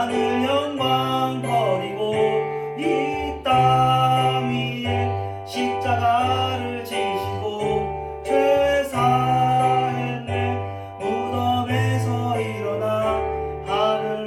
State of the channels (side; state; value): both; identical; correlation 1.00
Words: 영광 버리고 이 땅 위에 십자가를 지시고 죄 사했네. 무덤에서 일어나